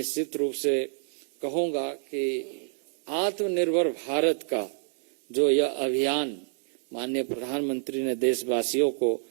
रूप से कहूंगा कि आत्मनिर्भर भारत का जो यह अभियान माननीय प्रधानमंत्री ने देशवासियों को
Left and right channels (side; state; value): left; silent; digital silence